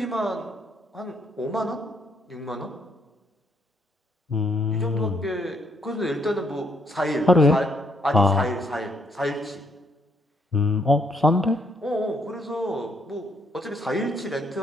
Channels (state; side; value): normal; both; correlation 0.72